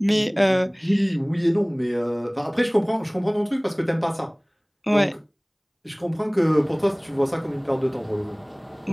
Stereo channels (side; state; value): both; identical; correlation 1.00